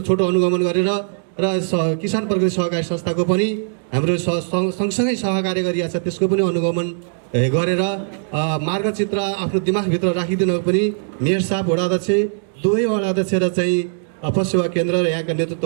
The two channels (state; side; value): silent; left; digital silence